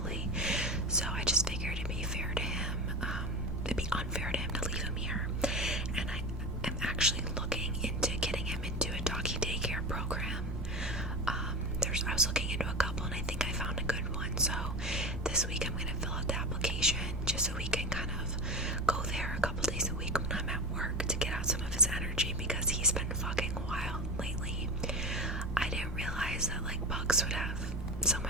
So I just figured it'd be fair to him. It'd be unfair to him to leave him here. And I am actually looking into getting him into a doggy daycare program. I was looking into a couple, and I think I found a good one. So this week I'm going to fill out the application just so we can kind of go there a couple days a week when I'm at work to get out some of his energy, because he's been fucking wild lately. I didn't realize that pugs would have so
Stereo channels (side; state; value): both; normal; correlation 0.27